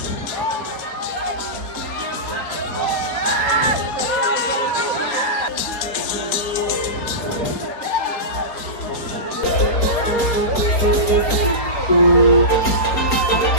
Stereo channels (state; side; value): late; right; 4.3 ms